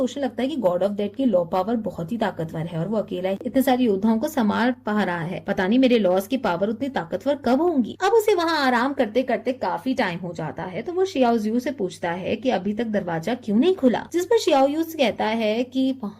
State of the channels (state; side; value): identical; both; correlation 1.00